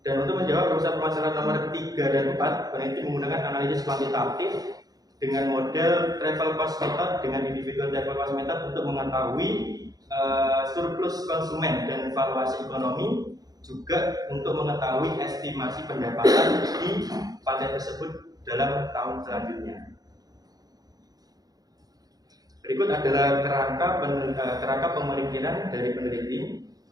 Dan untuk menjawab perumusan permasalahan nomor 3 dan 4, peneliti menggunakan analisis kuantitatif dengan model travel cost method dengan individual travel cost method untuk mengetahui surplus konsumen dan valuasi ekonomi, juga untuk mengetahui estimasi pendapatan di pantai tersebut dalam tahun selanjutnya. Berikut adalah kerangka pemikiran dari peneliti.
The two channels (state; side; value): late; left; 0.18 ms